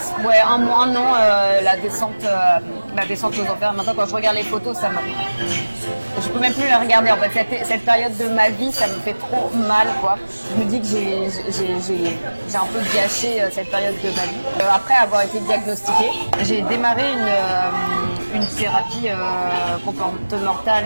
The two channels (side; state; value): both; inverted; correlation -1.00